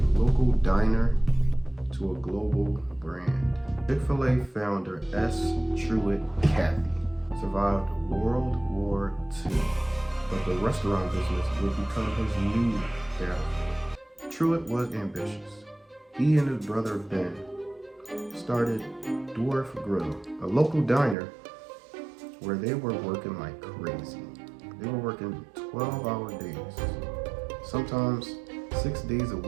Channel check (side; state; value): left; drops out; at 21.2 s